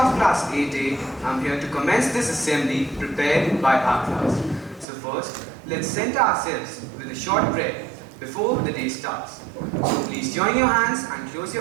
Class 8A, am here to commence this assembly prepared by our class. So first, let's center ourselves with a short prayer before the day starts. So please join your hands and close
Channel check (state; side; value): drops out; left; at 4.9 s